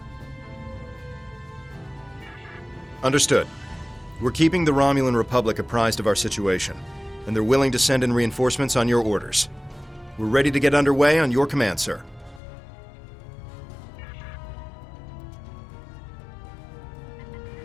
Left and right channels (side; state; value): right; drops out; at 12.4 s